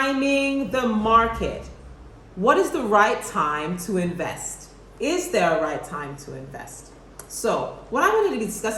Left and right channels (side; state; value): both; identical; correlation 1.00